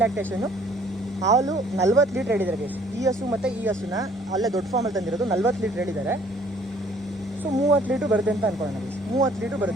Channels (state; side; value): normal; both; correlation 0.58